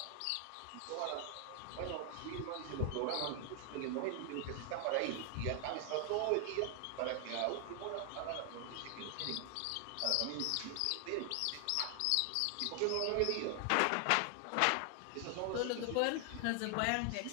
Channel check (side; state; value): both; different; correlation 0.00